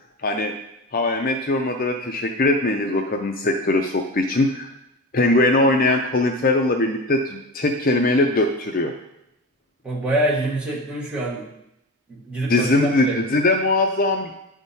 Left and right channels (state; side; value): normal; both; correlation 0.27